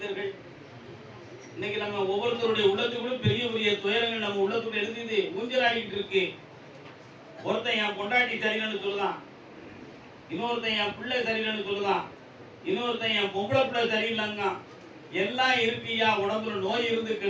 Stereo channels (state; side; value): identical; both; correlation 1.00